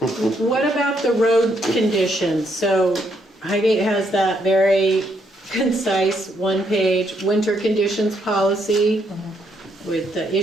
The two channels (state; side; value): normal; both; correlation 0.74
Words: What about the road conditions? So Highgate has that very concise 1-page winter conditions policy with the